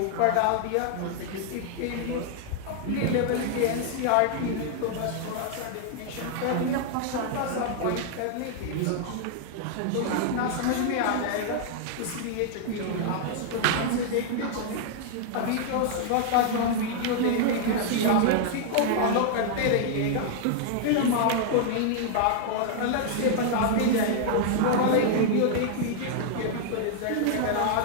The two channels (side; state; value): both; different; correlation 0.00